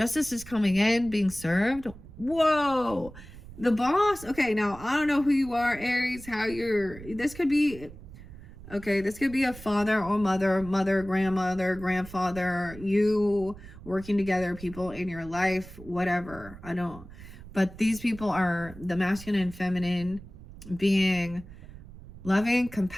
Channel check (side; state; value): right; noise; rumble, 17 dB below the sound